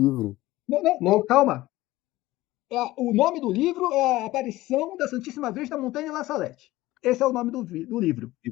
Não, calma. O nome do livro é a aparição da Santíssima Virgem da Montanha de La Salette. Esse é o nome do livro.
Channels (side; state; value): right; quieter; 17.5 dB